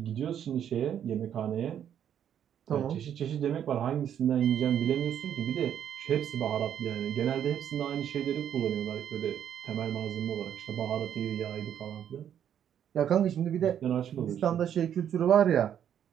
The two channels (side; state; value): left; quieter; 9.5 dB